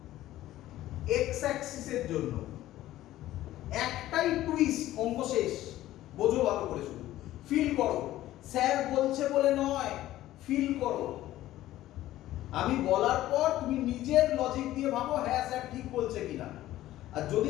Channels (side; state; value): right; quieter; 14.7 dB